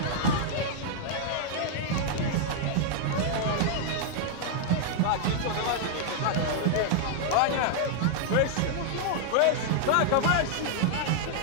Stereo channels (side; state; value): both; different; correlation 0.00